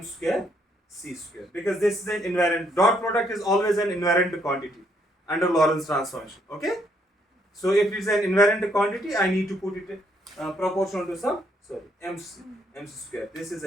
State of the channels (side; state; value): both; normal; correlation 0.71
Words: square C square, because this is an invariant, dot product is always an invariant quantity under Lorentz transformation. Okay. So if it is an invariant quantity, I need to put it proportional to some, M square. This is